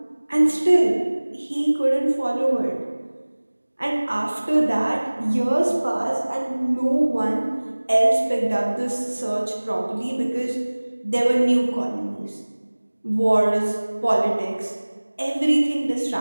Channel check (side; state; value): both; inverted; correlation -1.00